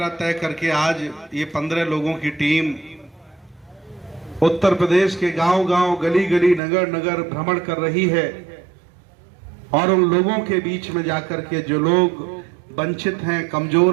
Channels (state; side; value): drops out; left; at 6.6 s